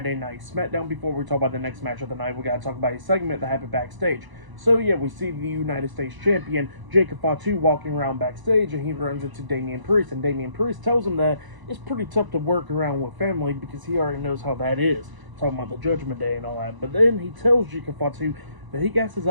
night SmackDown, before we talk about the next match of the night, we gotta talk about a segment that happened backstage. So, yeah, we see the United States Champion, Jacob Fatu, walking around backstage, and he runs into Damian Priest, and Damian Priest tells him that it's pretty tough to work around with family because he already knows how that is, talking about the Judgment Day and all that. But then he tells Jacob Fatu that he got his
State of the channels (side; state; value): left; late; 1.0 ms